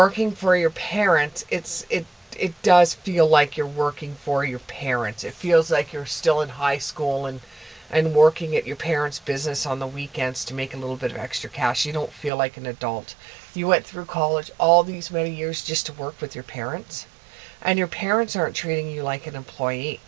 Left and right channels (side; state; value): left; drops out; at 12.3 s